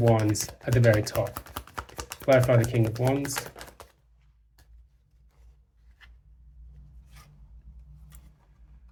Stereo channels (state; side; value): identical; both; correlation 1.00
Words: at the very top. Clarify the King of Wands.